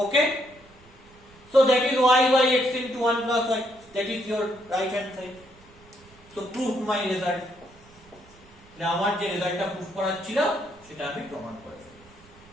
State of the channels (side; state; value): right; noise; rumble, 26 dB below the sound